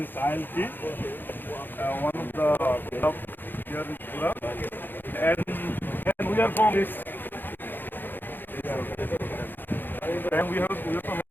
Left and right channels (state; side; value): late; right; 0.093 ms